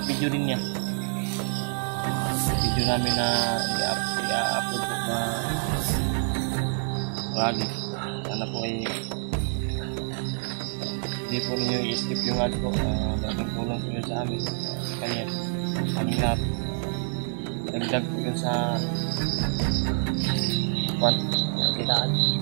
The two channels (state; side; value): silent; left; 60 dB below the other